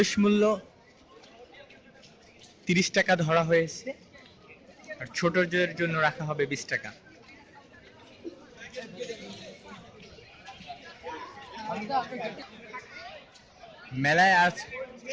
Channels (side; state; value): both; identical; correlation 1.00